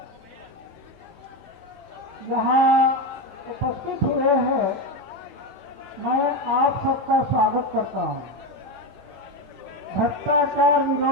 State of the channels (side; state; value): both; normal; correlation 0.14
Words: यहाँ उपस्थित हुए हैं, मैं आप सबका स्वागत करता हूँ। भ्रष्टाचार